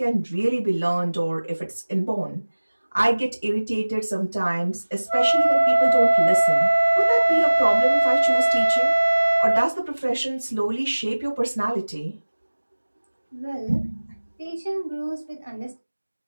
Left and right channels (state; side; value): inverted; both; correlation -1.00